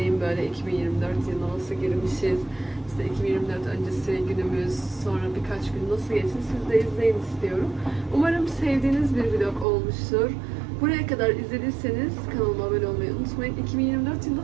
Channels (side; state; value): left; drops out; at 9.7 s